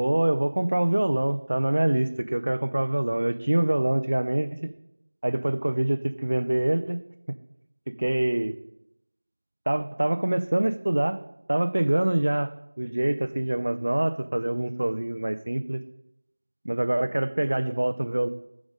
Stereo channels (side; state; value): both; inverted; correlation -1.00